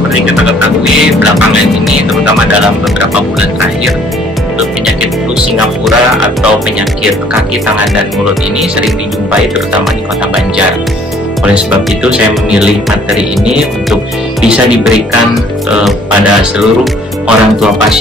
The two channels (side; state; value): both; normal; correlation 0.59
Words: kita ketahui belakangan ini, terutama dalam beberapa bulan terakhir, penyakit flu Singapura atau penyakit kaki, tangan, dan mulut ini sering dijumpai terutama di Kota Banjar. Oleh sebab itu saya memilih materi ini untuk bisa diberikan pada seluruh orang tua